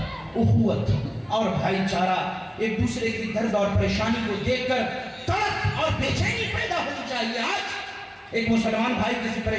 اخوت اور بھائی چارہ، ایک دوسرے کی درد اور پریشانی کو دیکھ کر تڑپ اور بے چینی پیدا ہونی چاہیے. آج ایک مسلمان بھائی کسی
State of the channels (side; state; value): both; identical; correlation 1.00